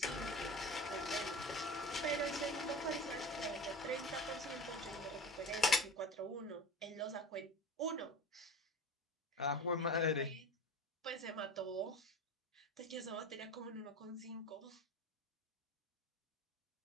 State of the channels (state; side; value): normal; both; correlation 0.33